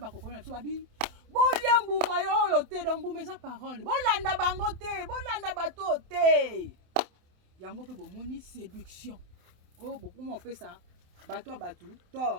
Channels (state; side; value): late; left; 27 ms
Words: biso babi. Bolia mbuma yo te do mbuma eza parole. Bolanda bango te, bolanda bato te. Yango pe bomoni séduction. Oh bokuma opesa bato batu